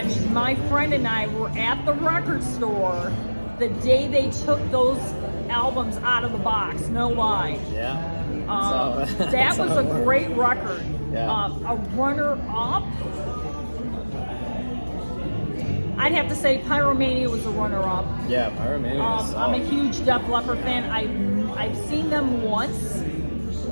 I mean, my friend and I were at the record store the day they took those albums out of the box. No lie. Yeah. That That's was how a it works. great record. Yeah. A runner-up. I'd have to say Pyromania was a runner-up. Yeah, Pyromania is I'm a solid. huge Def Leppard fan. I've seen them once.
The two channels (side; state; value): both; inverted; correlation -1.00